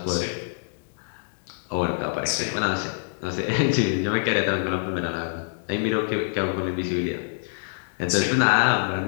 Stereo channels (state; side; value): silent; right; digital silence